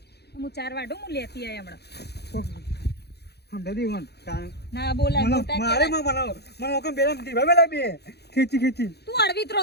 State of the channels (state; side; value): late; right; 0.48 ms